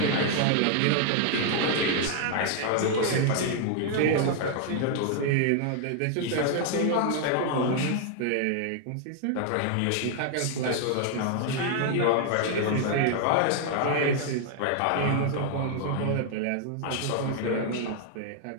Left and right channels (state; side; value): different; both; correlation 0.00